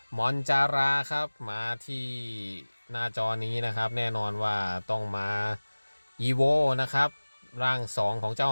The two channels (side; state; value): both; inverted; correlation -1.00